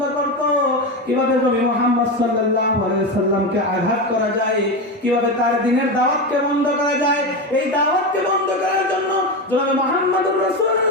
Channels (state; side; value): normal; both; correlation 0.17